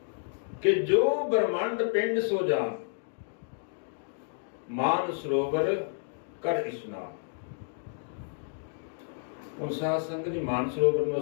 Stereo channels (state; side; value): silent; right; digital silence